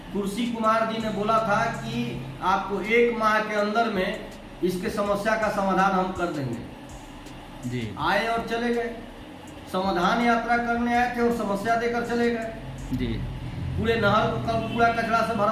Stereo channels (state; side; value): identical; both; correlation 1.00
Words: कुर्सी कुमार जी ने बोला था कि आपको 1 माह के अंदर में इसके समस्या का समाधान हम कर देंगे। जी। आए और चले गए, समाधान यात्रा करने आए थे और समस्या देकर चले गए। जी। पूरे नहर को कल कूड़ा कचरा से